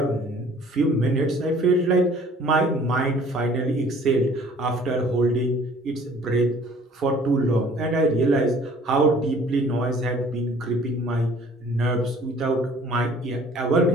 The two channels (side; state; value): both; normal; correlation 0.53